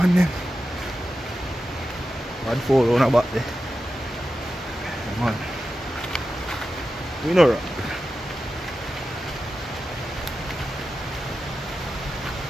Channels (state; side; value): normal; both; correlation 0.92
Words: then. Bad fall on about there. Yeah, man. We know right.